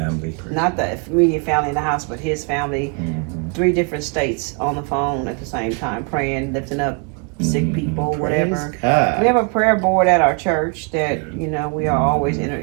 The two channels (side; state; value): left; quieter; 36.6 dB